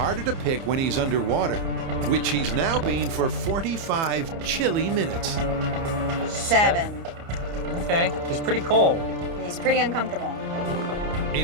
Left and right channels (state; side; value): late; left; 30 ms